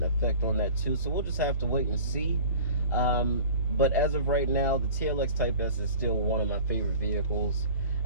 effect on that too. So we'll just have to wait and see. But as of right now, the TLX Type S is still one of my favorite vehicles.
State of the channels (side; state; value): both; inverted; correlation -0.42